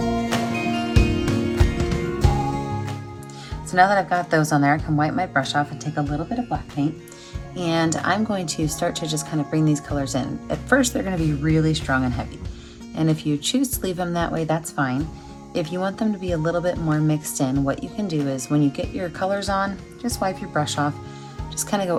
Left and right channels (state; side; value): identical; both; correlation 1.00